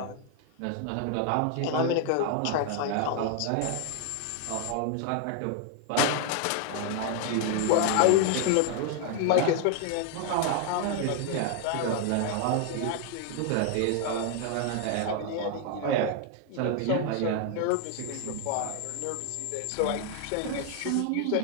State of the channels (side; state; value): both; different; correlation 0.00